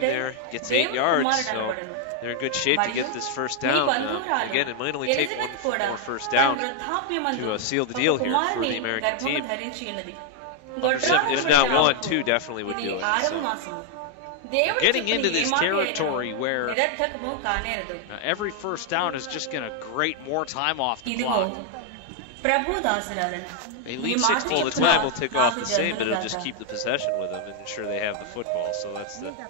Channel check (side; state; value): both; different; correlation 0.00